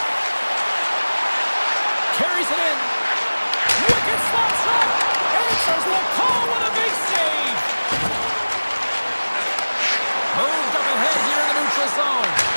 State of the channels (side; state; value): both; inverted; correlation -1.00